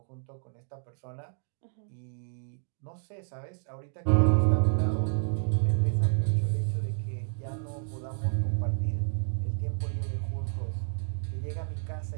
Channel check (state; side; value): silent; left; digital silence